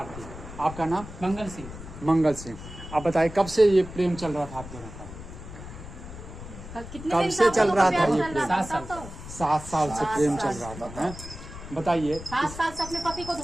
आपका नाम? मंगल सिंह। मंगल सिंह। आप बताइए कब से ये प्रेम चल रहा था आप दोनों का? कब से चल रहा था ये प्रेम? 7 साल। 7 साल से प्रेम चल रहा था। हैं? बताइए। 7 साल से अपने पति को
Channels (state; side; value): noise; left; rumble, 13 dB below the sound